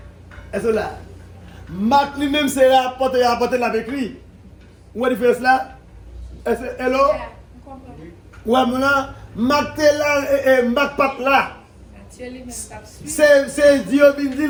Est-ce que là? Marc lui-même, c'est rapporté avec lui. Où est la différence là? Hello? Ouais, maintenant, Marc est là et Marc pas là. C'est Dieu qui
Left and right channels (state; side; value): identical; both; correlation 1.00